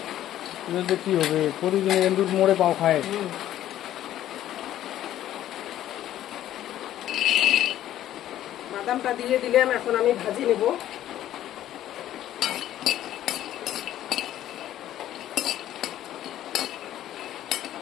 কি হবে? প্রতিদিন এন্দুর মোড়ে পাও খায়। বাদামটা দিয়ে দিলাম, এখন আমি ভাজি নেব।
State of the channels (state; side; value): quieter; right; 12.5 dB